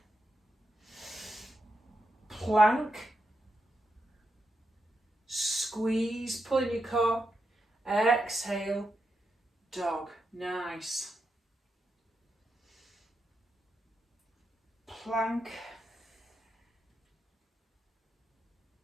Plank, squeeze, pull in your core, exhale, dog. Nice. Plank,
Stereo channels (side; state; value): both; normal; correlation 0.85